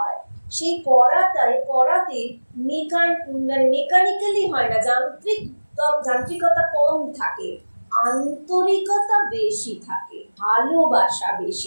সেই করাতে মেকানিক্যালি হয় না, যান্ত্রিকতা কম থাকে, আন্তরিকতা বেশি থাকে, ভালোবাসা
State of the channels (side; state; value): both; inverted; correlation -1.00